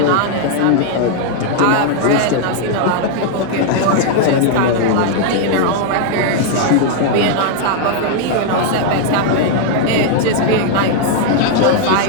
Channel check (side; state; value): both; different; correlation 0.00